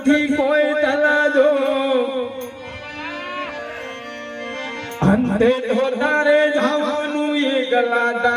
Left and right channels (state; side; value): identical; both; correlation 1.00